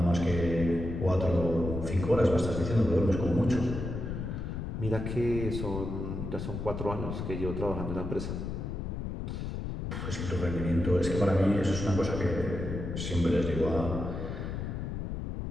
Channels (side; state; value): left; noise; rumble, 4 dB below the sound